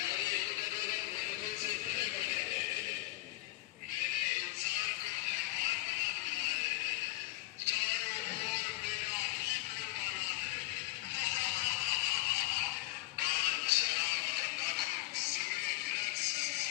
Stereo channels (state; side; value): quieter; right; 18.9 dB